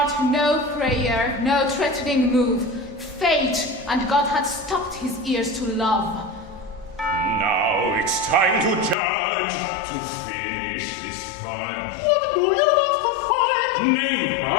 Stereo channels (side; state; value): right; drops out; at 9.0 s